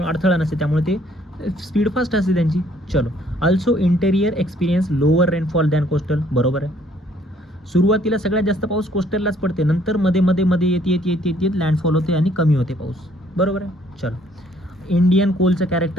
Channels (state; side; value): normal; both; correlation 0.63